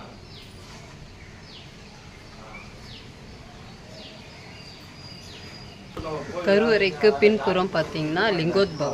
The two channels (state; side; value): identical; both; correlation 1.00